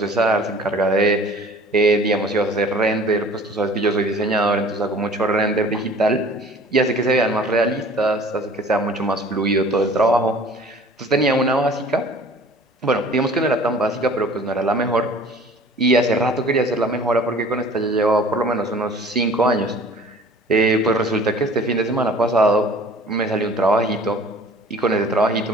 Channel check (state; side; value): normal; both; correlation 0.48